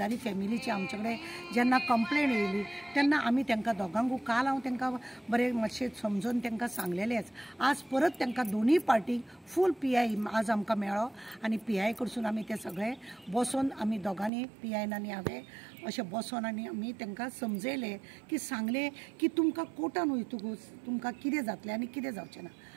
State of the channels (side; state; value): left; drops out; at 14.3 s